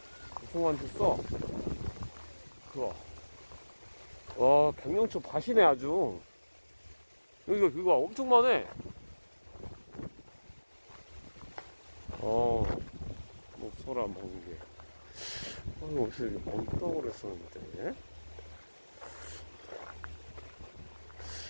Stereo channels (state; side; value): inverted; both; correlation -1.00